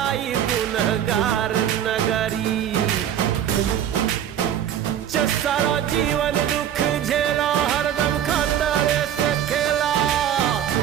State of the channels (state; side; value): quieter; left; 10.1 dB